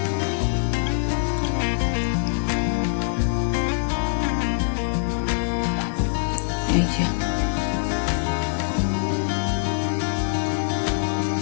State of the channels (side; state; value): right; silent; digital silence